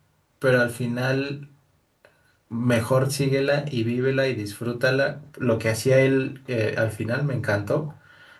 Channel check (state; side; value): identical; both; correlation 1.00